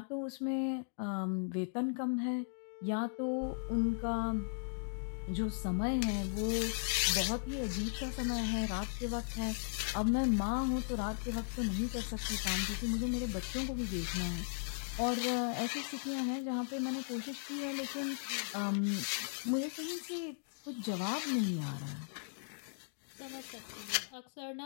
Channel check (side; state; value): right; silent; digital silence